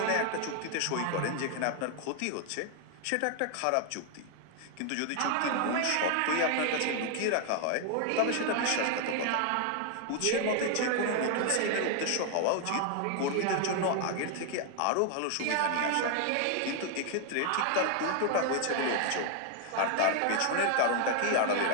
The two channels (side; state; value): both; different; correlation 0.00